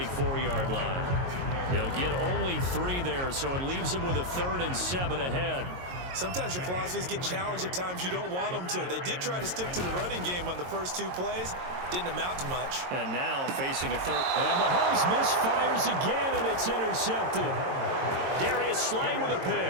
line. He'll get only 3 there, so it leaves him with a 3rd and 7 ahead. Sometimes your philosophies get challenged at times you don't want them to. They did try to stick to the running game on the first 2 plays. Didn't amount to much. And now facing a 3rd. And Mahomes misfires again, and it's intercepted. Darius Slay with a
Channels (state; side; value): late; left; 22 ms